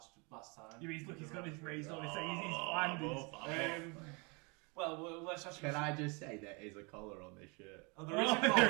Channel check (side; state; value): left; quieter; 30.8 dB